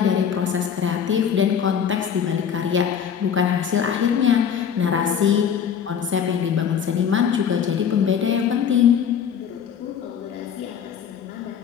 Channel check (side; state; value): right; quieter; 7.9 dB